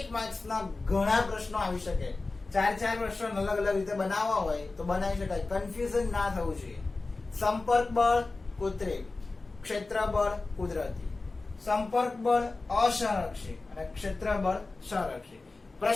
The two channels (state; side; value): quieter; right; 3.5 dB